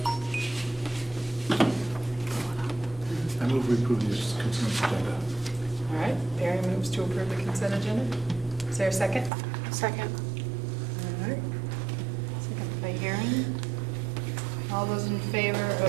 I move we approve this consent agenda. All right, Barry moves to approve the consent agenda. Is there a second? Second. All right. Second by Erin. All those in favor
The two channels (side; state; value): left; drops out; at 9.3 s